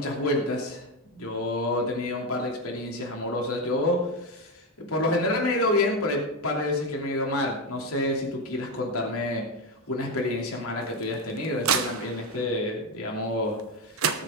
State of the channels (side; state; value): both; normal; correlation 0.11